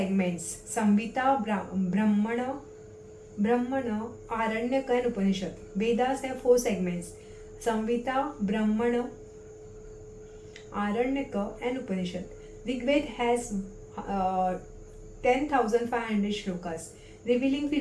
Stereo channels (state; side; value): identical; both; correlation 1.00